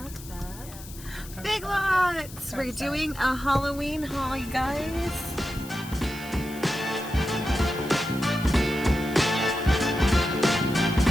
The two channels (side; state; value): left; noise; hiss, 16 dB below the sound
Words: Big Lots! We're doing a Halloween haul, you guys.